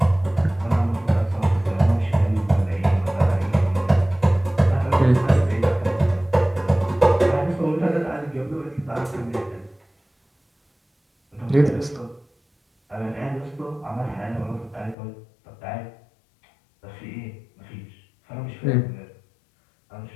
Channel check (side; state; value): right; drops out; at 15.0 s